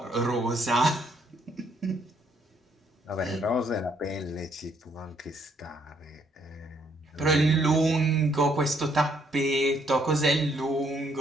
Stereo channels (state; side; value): normal; both; correlation 0.69